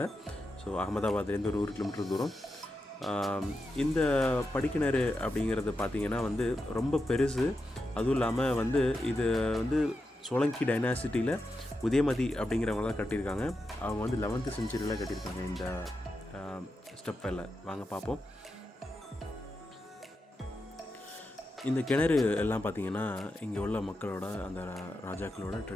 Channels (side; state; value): both; normal; correlation 0.88